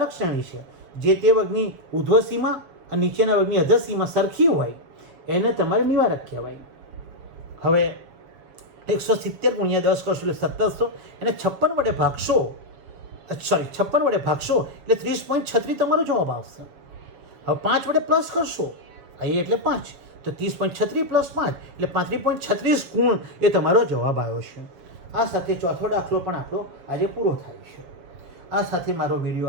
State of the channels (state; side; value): late; left; 7.1 ms